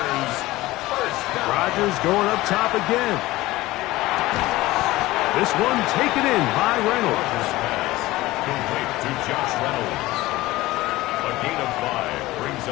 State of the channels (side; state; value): right; quieter; 18.3 dB